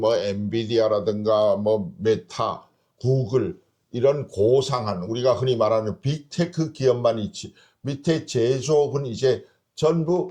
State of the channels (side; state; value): both; identical; correlation 1.00